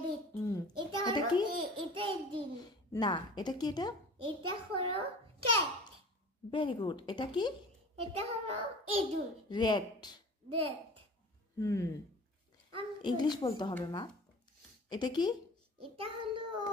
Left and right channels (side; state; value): both; normal; correlation 0.41